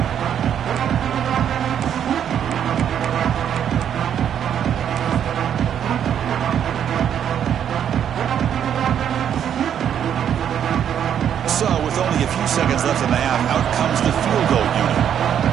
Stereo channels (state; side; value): quieter; left; 9.1 dB